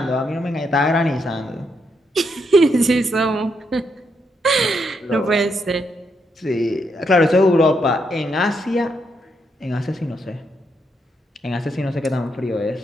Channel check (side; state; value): both; normal; correlation 0.79